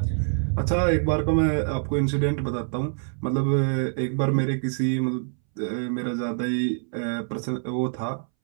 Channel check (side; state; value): left; silent; 61 dB below the other